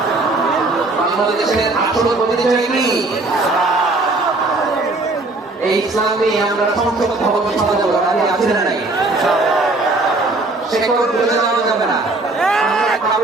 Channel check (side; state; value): left; quieter; 3.1 dB